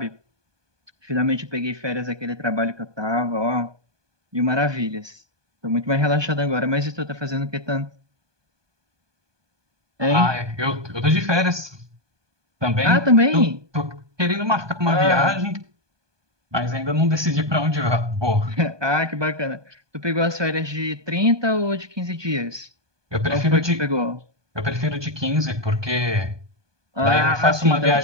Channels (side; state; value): left; late; 1.2 ms